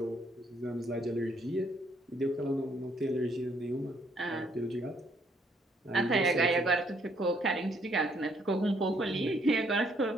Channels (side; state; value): both; normal; correlation 0.69